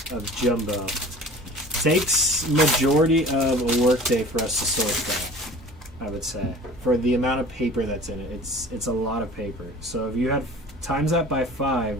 of jumbo, takes majority of a work day for us to sort that, I would say. For the amount of paper that's in it, it's a lot of paper. So if you had times that by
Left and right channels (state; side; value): normal; both; correlation 0.43